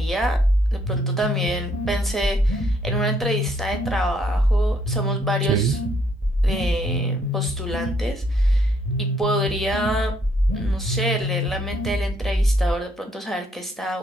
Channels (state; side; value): normal; both; correlation 0.69